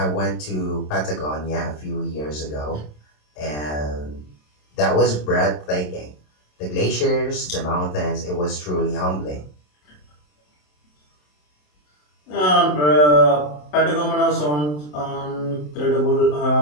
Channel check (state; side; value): late; right; 27 ms